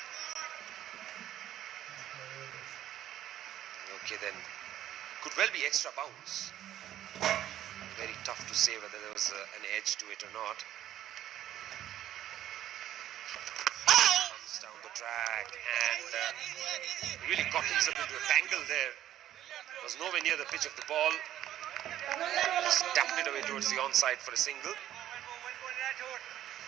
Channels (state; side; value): quieter; left; 12.2 dB